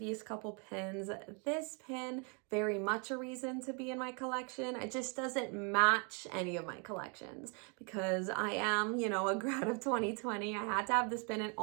couple pins, this pin very much a reason to be in my collection. It just doesn't match any of my collections because I am, you know, a grad of 2020. I had to have this pin, and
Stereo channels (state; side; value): quieter; left; 36.4 dB